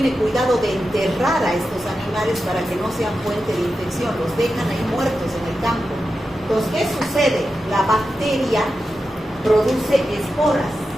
cuidado de enterrar a estos animales para que no sean fuente de infección. Los dejan ahí muertos en el campo. Entonces, ¿qué sucede? La bacteria produce esporas.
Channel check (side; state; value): both; normal; correlation 0.90